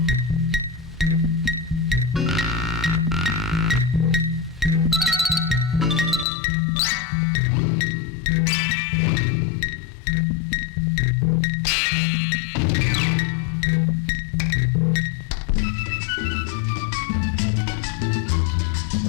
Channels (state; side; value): drops out; right; at 6.2 s